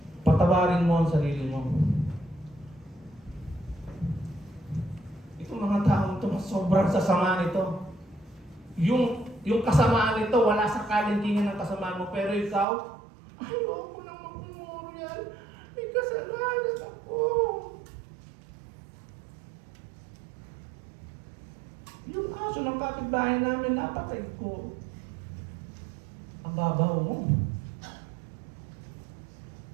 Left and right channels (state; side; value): drops out; left; at 12.7 s